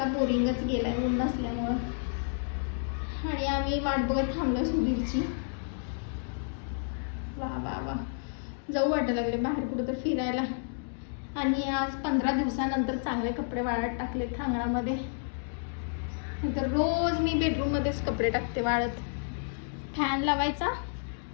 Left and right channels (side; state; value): right; silent; digital silence